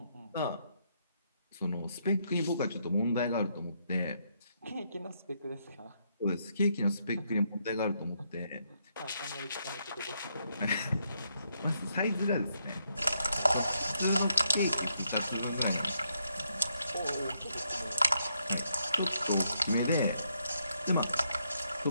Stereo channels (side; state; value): both; inverted; correlation -0.77